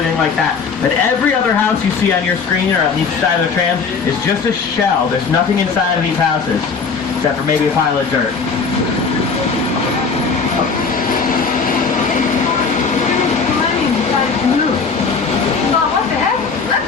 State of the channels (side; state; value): right; quieter; 5.2 dB